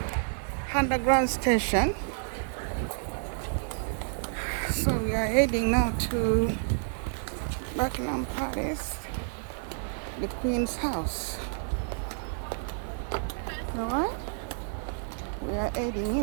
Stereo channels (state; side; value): silent; left; digital silence